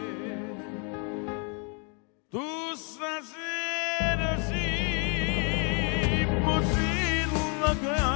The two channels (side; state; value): right; quieter; 36.5 dB